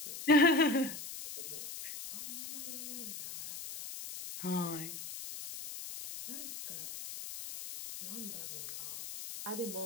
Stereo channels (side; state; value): left; noise; hiss, 9 dB below the sound